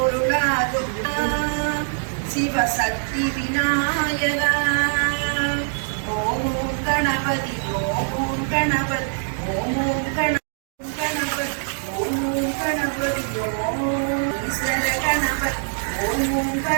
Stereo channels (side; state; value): left; silent; digital silence